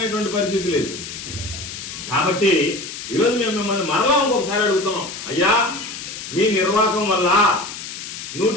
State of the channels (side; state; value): left; noise; hiss, 9 dB below the sound